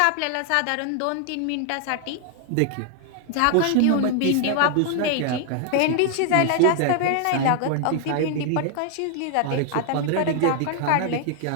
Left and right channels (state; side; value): different; both; correlation 0.00